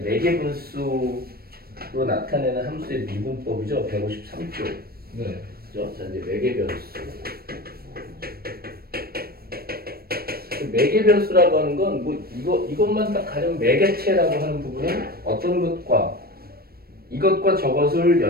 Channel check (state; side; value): late; left; 0.44 ms